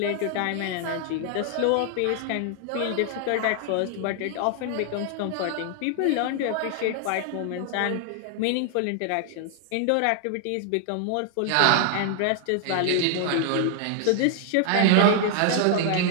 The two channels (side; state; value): both; different; correlation 0.00